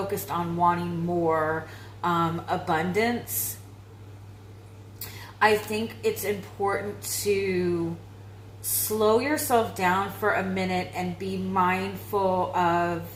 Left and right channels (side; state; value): both; identical; correlation 1.00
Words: on wanting more abundance, I think it's important to slow yourself down for a minute and be mindful of